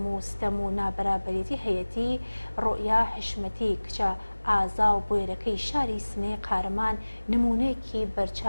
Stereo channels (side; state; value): both; inverted; correlation -1.00